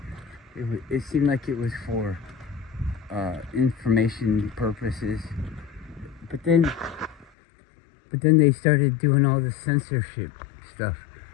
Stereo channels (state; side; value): drops out; right; at 7.3 s